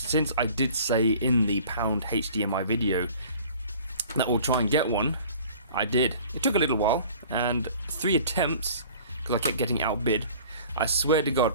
I did say in the Pound HDMI video that we'll try and get one, I did. It took a little while, and 3 attempts, because I kept getting outbid. I swear to God,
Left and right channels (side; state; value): both; inverted; correlation -0.47